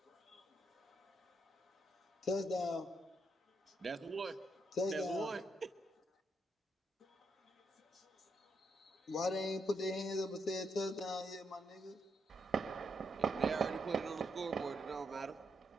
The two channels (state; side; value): normal; both; correlation 0.79